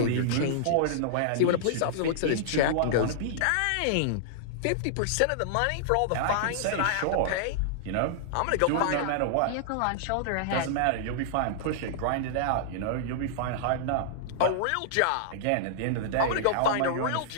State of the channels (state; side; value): different; both; correlation -0.01